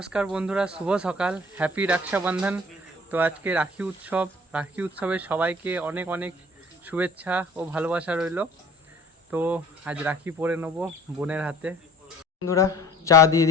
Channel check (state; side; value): normal; both; correlation 0.50